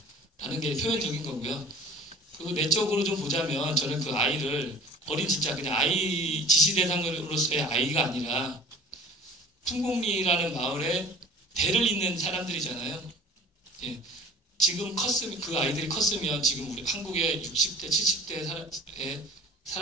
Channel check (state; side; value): normal; both; correlation 0.43